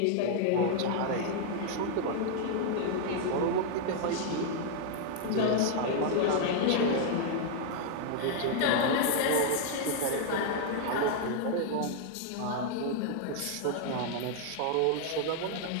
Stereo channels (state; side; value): different; both; correlation 0.00